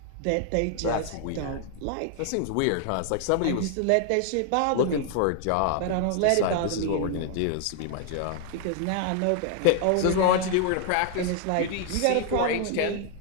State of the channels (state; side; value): different; both; correlation 0.00